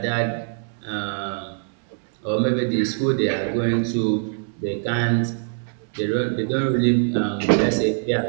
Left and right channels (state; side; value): silent; left; 63 dB below the other